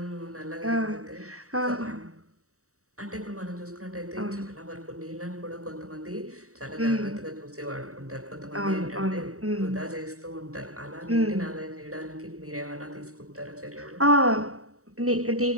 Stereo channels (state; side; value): late; left; 0.65 ms